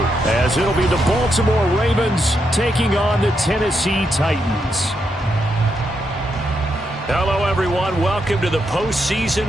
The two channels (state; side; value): normal; both; correlation 0.81